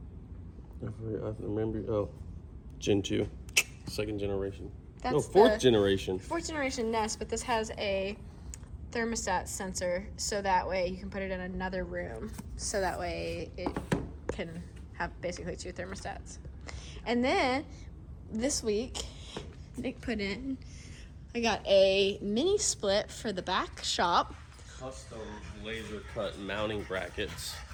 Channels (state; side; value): identical; both; correlation 1.00